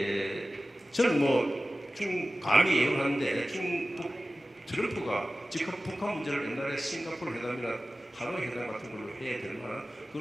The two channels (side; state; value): both; normal; correlation 0.96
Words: 저는 뭐 감히 예언하는데 트럼프가 즉각 북한 문제를 옛날에 싱가포르 회담이나 하노이 회담 같은 걸로 해야 될 만한